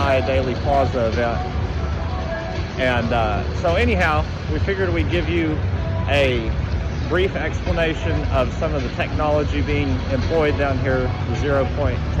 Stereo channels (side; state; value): both; identical; correlation 1.00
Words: Daily Plaza event. And so anyhow, we figured we'd give you a brief explanation of some of the technology being employed down here, the 0 Point